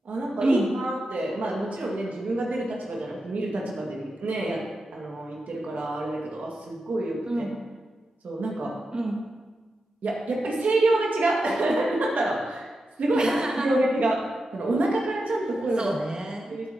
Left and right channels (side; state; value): both; normal; correlation 0.89